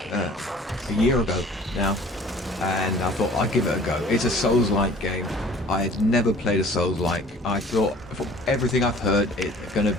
year ago now, and I thought I'd give it a go. It's a Souls-like game. I had never played a Souls-like. I thought, from everything I've heard, it's going to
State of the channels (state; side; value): normal; both; correlation 0.49